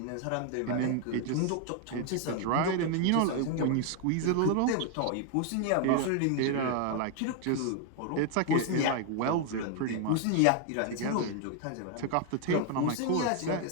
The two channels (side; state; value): both; different; correlation 0.00